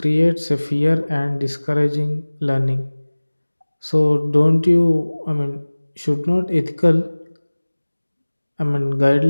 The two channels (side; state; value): both; inverted; correlation -1.00